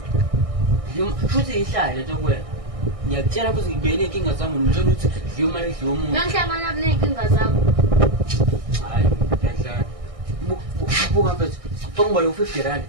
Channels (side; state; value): left; late; 1.6 ms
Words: Futhi ihlale lento kwena. Ngiyakutshela futhi ngibene inkinga zami ngitshela ukuthi dliwa imali dliwa umuntu. Ngihlangana kunenkinga zakho. Hayi, ngiyadlala. Buka mfethu. Ngibona u50